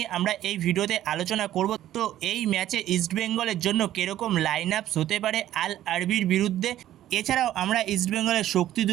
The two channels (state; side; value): quieter; left; 12.9 dB